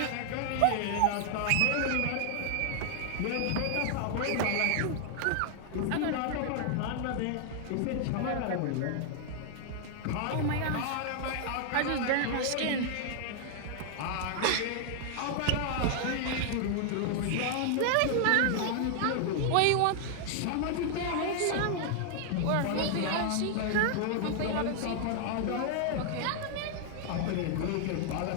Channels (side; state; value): both; different; correlation 0.00